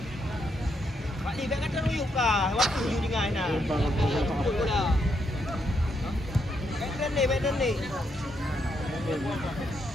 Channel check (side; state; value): both; normal; correlation 0.78